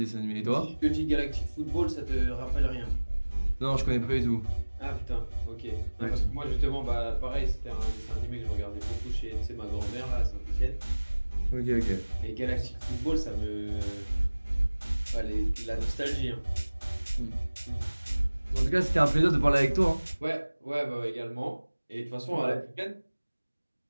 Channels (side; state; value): both; inverted; correlation -1.00